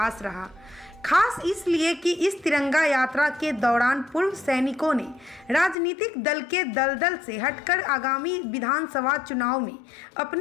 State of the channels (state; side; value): drops out; right; at 5.8 s